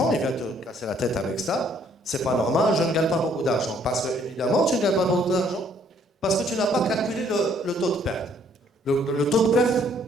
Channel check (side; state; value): both; normal; correlation 0.64